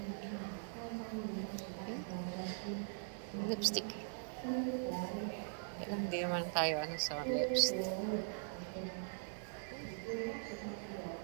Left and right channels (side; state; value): left; silent; digital silence